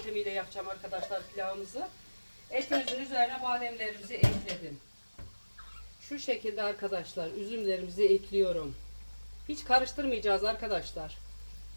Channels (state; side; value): inverted; both; correlation -1.00